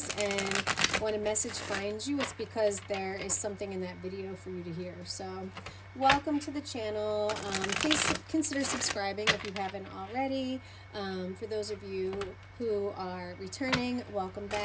And when a message finds you, it's because there is something in that video for you to hear. So welcome to the channel. Please consider subscribing if you haven't already. For those of you who are returning, welcome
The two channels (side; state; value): both; identical; correlation 1.00